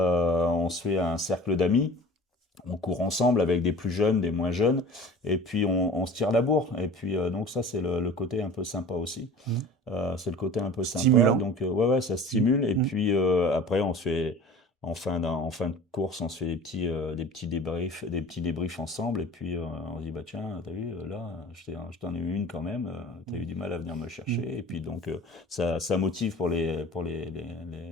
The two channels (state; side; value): normal; both; correlation 0.42